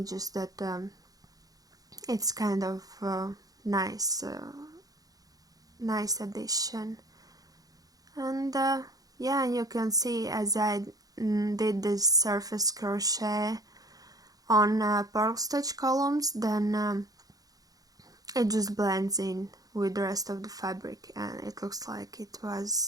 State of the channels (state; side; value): late; left; 0.18 ms